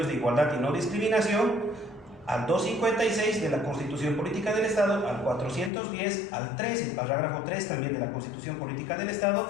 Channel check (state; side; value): drops out; right; at 5.7 s